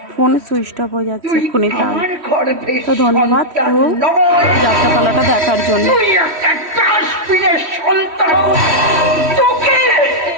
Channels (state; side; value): late; left; 3.1 ms